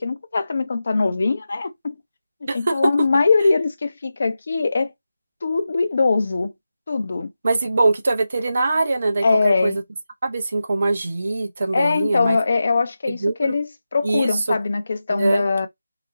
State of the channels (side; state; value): both; inverted; correlation -0.92